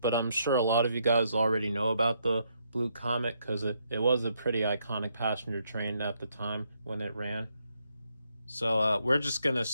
I'm sure a lot of you guys already know about the Blue Comet because it was a pretty iconic passenger train at the time when it ran. So we're just going to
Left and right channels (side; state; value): both; inverted; correlation -0.75